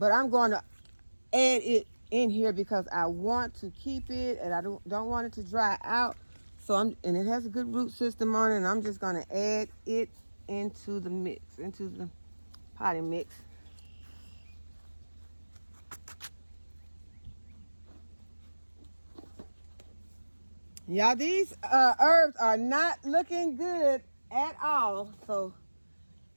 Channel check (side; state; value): both; inverted; correlation -1.00